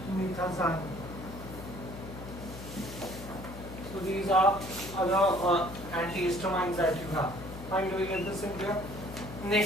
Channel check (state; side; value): noise; left; hum, 12 dB below the sound